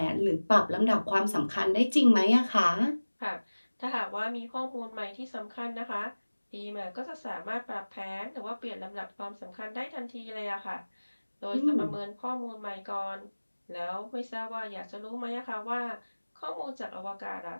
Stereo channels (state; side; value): inverted; both; correlation -1.00